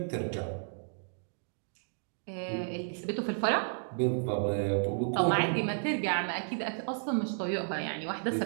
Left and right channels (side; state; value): left; silent; digital silence